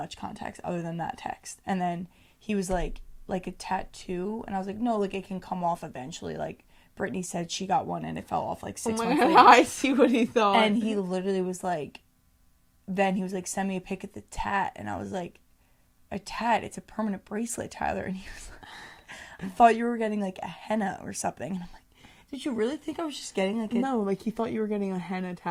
context other than that text. And then he was like a tattoo. And I was like, no, like, it can come off eventually. Like, Brittany said she got one and it fell off, like, 6 months later. I see what he thought. And he literally was like, then he was like, send me a pic of the tat. And I was like, a tat? It's a permanent bracelet, Tyler. And he was like, I thought you were getting, like, a henna or something. And I'm like, did you really think I was just getting like No, like he thought you were getting a henna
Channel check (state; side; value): identical; both; correlation 1.00